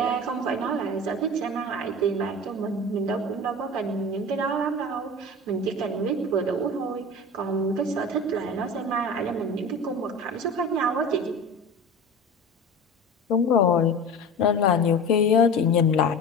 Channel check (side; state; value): both; normal; correlation 0.33